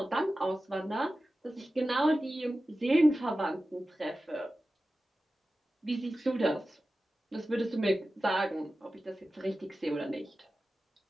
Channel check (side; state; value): both; normal; correlation 0.94